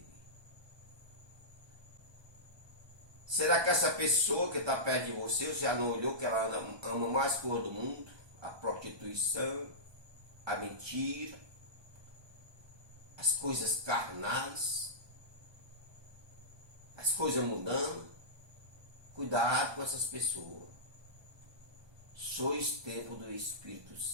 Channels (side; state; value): left; late; 1.2 ms